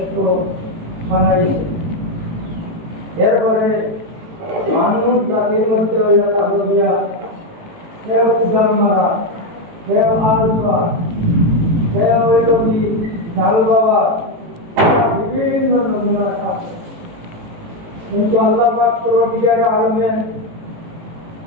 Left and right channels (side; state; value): left; late; 18 ms